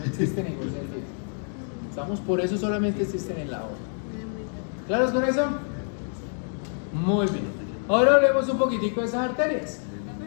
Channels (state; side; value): silent; right; 60 dB below the other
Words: existen en ningún sentido. ¿Estamos? Por eso solamente existen en la aorta. ¿Claros con eso? Muy bien. Ahora hablemos un poquitico de esas arterias.